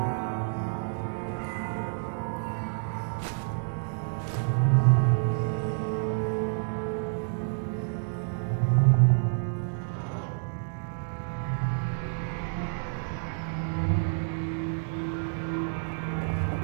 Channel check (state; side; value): silent; left; digital silence